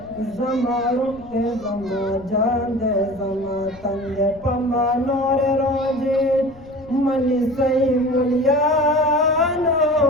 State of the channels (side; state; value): left; noise; rumble, 23 dB below the sound